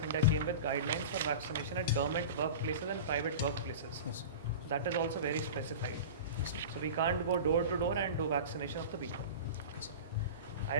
India came with guidelines for vaccination at government workplaces and private workplaces. Yes. That is also very specified. So we can't go door to door and do vaccination of the people. Yes. I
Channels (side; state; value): both; inverted; correlation -0.31